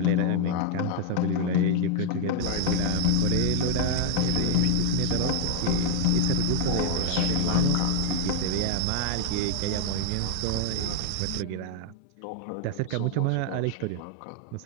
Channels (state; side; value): different; both; correlation 0.00